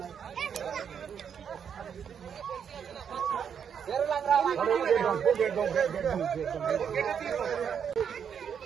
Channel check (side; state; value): left; quieter; 7.6 dB